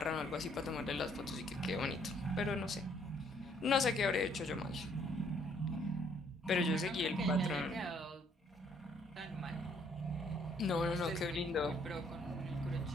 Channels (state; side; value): normal; both; correlation 0.66